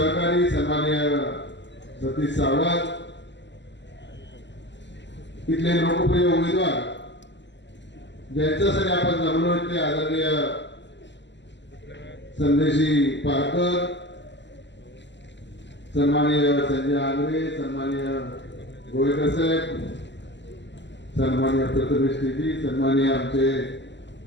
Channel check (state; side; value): late; right; 0.52 ms